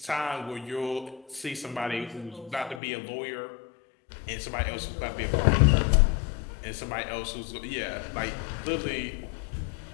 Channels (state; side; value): drops out; right; at 2.8 s